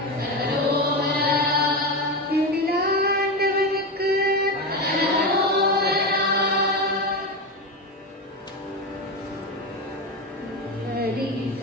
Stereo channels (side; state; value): both; normal; correlation 0.16